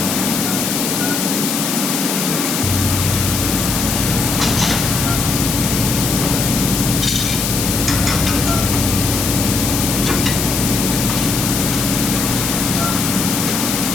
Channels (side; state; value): left; noise; hiss, 1 dB below the sound